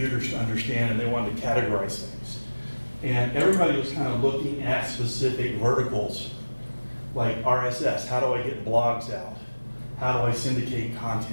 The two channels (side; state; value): both; inverted; correlation -1.00